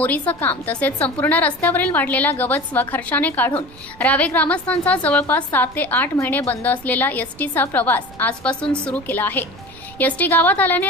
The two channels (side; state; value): right; noise; rumble, 23 dB below the sound